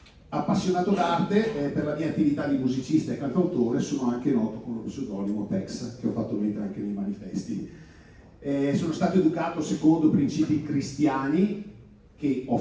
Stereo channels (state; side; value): identical; both; correlation 1.00